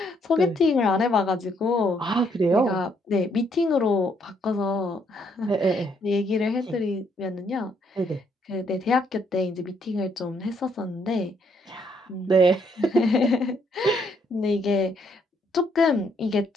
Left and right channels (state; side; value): normal; both; correlation 0.71